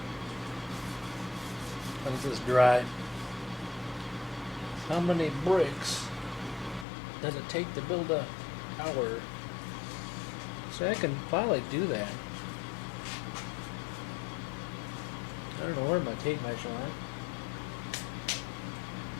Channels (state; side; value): drops out; right; at 6.9 s